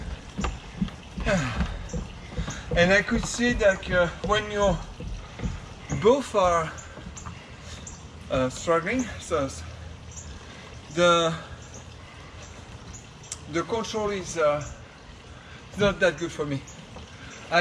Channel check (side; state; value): both; identical; correlation 1.00